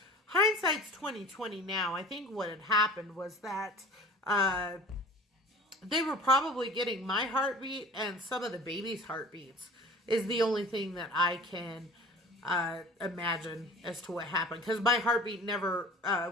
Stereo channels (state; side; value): normal; both; correlation 0.42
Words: Hindsight's 2020 now. I think what had happened was that they were probably getting my heartbeat and some of the baby's heartbeats is the only thing that I can imagine as to what happened. Because my heartbeat never